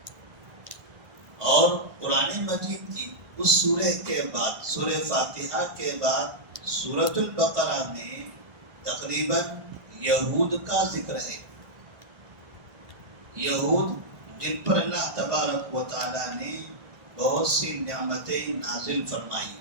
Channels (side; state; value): left; late; 1.2 ms